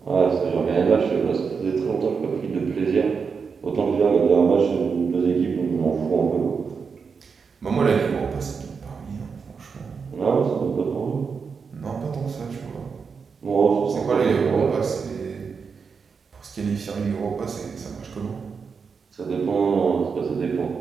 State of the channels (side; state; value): left; quieter; 5.6 dB